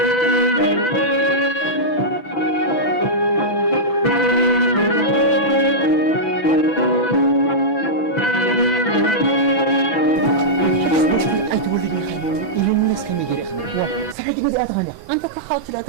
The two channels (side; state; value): right; late; 6.0 ms